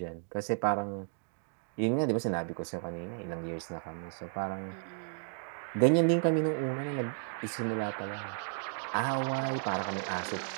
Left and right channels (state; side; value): silent; left; 55 dB below the other